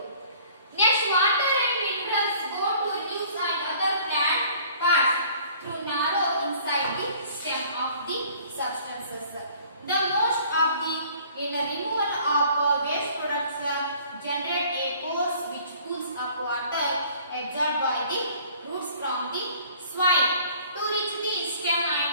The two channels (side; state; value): both; inverted; correlation -0.53